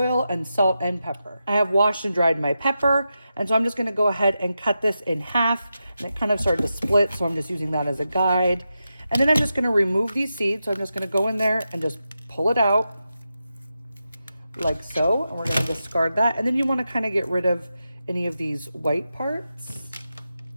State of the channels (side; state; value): both; inverted; correlation -0.89